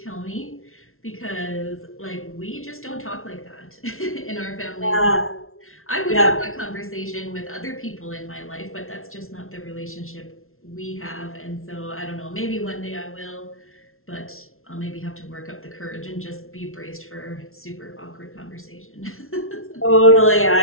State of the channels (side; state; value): right; late; 0.62 ms